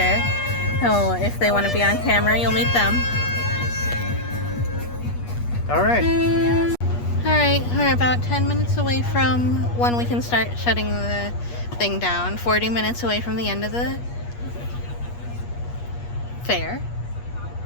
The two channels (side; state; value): right; late; 8.4 ms